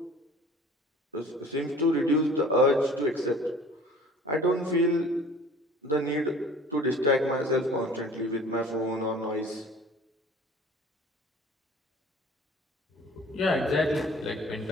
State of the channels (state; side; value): normal; both; correlation 0.47